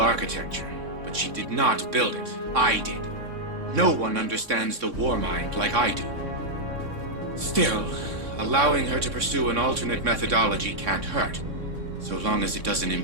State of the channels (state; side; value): late; left; 3.6 ms